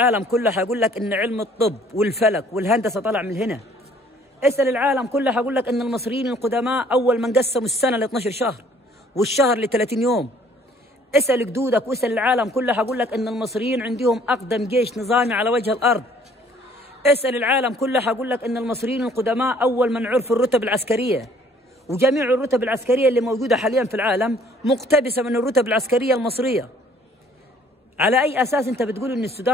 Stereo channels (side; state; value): both; normal; correlation 0.58